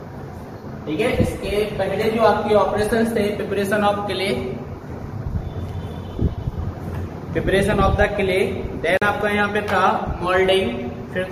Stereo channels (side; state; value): both; identical; correlation 1.00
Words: ठीक है, इसके पहले जो आपके ऑपरेशन थे preparation of clay, preparation of the clay, then आपका यहाँ पे था मोल्डिंग, फिर